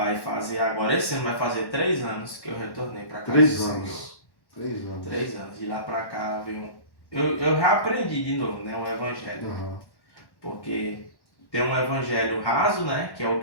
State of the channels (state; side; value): late; right; 1.1 ms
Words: fazer agora, esse ano vai fazer 3 anos que eu retornei para cá. 3 anos. 3 anos. 3 anos. De lá para cá veio eu reaprendi de novo, né, um evangelho. Porque tem um evangelho raso, né, que é o